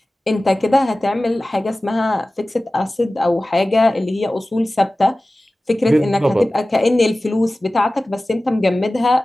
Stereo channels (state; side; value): normal; both; correlation 0.97